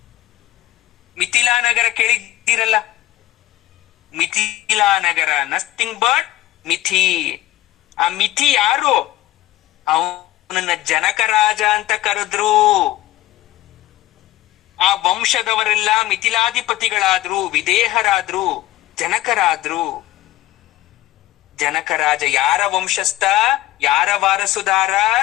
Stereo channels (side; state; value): right; quieter; 15.6 dB